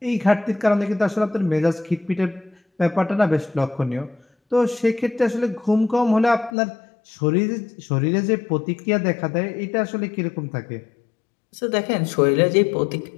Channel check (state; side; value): drops out; right; at 6.5 s